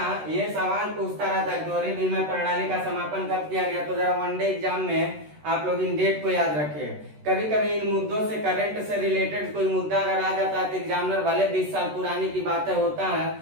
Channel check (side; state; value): left; late; 13 ms